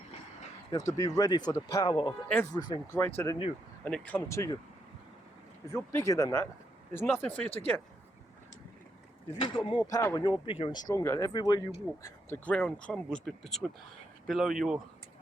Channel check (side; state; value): both; normal; correlation 0.79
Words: You have to be ready for the power of everything greater than you, and it comes to you. If you're bigger than that, there's nothing for you to get. If you've got more power and you're bigger and stronger, everywhere you walk, the ground crumbles below your